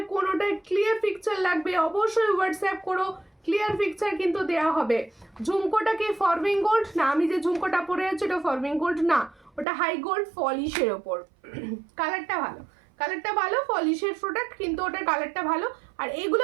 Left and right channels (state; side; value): drops out; left; at 9.7 s